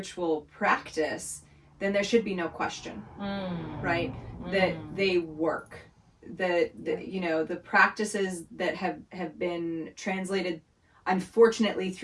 practice, then there should be no question, right? That they work. The practices that have been translated, unfortunately,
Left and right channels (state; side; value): identical; both; correlation 1.00